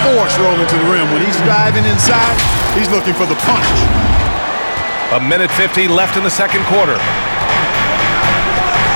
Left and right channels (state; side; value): inverted; both; correlation -1.00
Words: force rolling to the rim. When he's diving inside, he's looking for the punch. A minute 50 left in the second quarter.